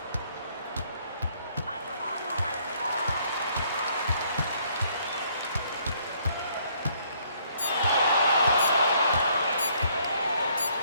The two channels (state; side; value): inverted; both; correlation -0.66